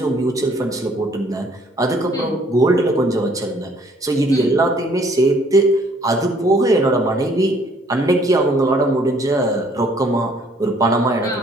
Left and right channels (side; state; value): both; normal; correlation 0.61